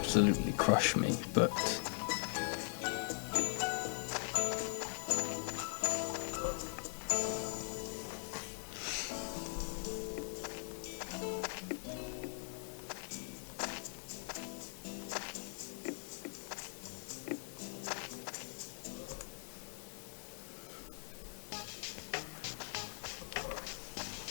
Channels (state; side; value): silent; right; 50 dB below the other